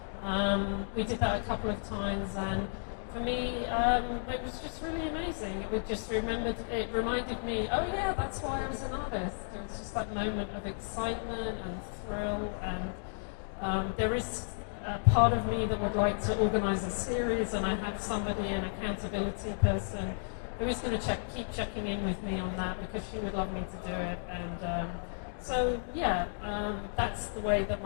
and we did that a couple of times, and for me, it was just really amazing. It reminded me, oh yeah, that's why I was an artist. It was just that moment of excitement and thrill, and there is a part of me that would like to organize a series, and I have somebody, an accountability person, who is going to keep checking in with me on that because she would love me to do it. And so yeah, that's the way that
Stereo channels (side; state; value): right; silent; digital silence